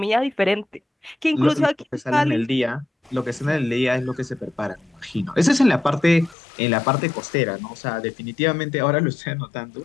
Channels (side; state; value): right; drops out; at 6.4 s